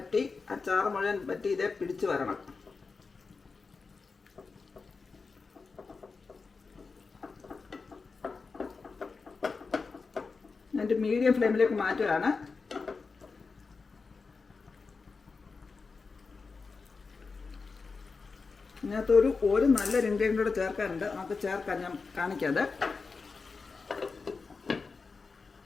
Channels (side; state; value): right; quieter; 4.5 dB